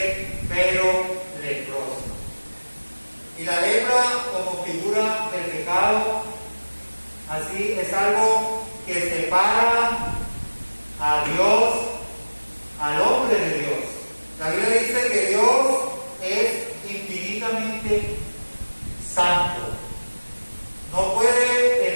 pero leproso. Y la lepra como figura del pecado, así es algo que separa a Dios, al hombre de Dios. La Biblia dice que Dios es infinitamente santo. No puede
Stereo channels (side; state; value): both; inverted; correlation -1.00